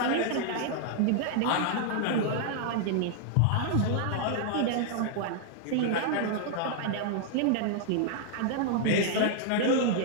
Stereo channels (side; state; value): both; different; correlation 0.00